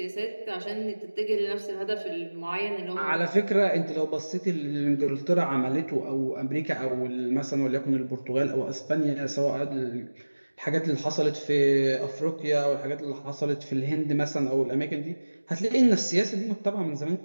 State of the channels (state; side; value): inverted; both; correlation -1.00